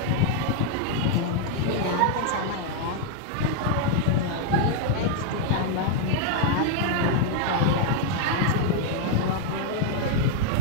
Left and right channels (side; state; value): both; different; correlation 0.00